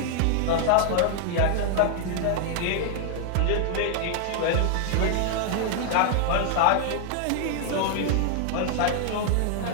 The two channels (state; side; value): different; both; correlation -0.01